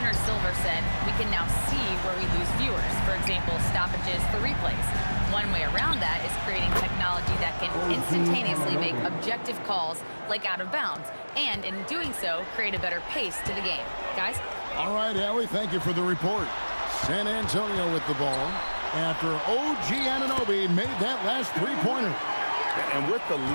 Silver said, we can now see where we lose viewers. For example, stoppages for replays. One way around that is creating technology that can instantaneously make objective calls like out of bounds, and in doing so, create a better pace to the game. Guys? All right, Allie, thank you for the report. San Antonio with the ball after OG Anunoby made that last three-pointer. And with the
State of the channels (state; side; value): inverted; both; correlation -1.00